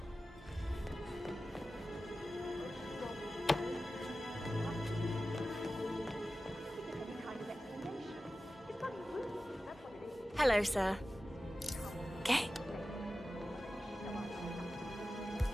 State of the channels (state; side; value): normal; both; correlation 0.94